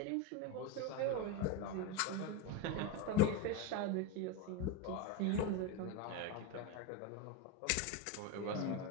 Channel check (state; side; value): different; both; correlation 0.04